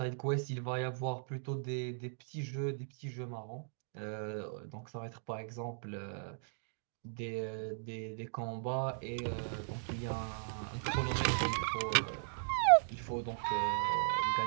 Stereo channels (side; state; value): left; silent; digital silence